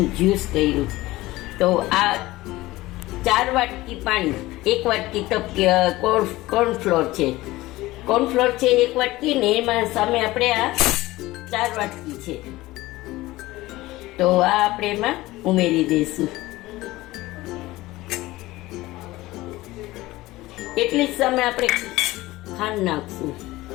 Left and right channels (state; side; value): quieter; right; 18.4 dB